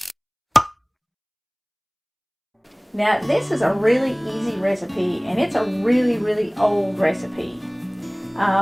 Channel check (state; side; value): identical; both; correlation 1.00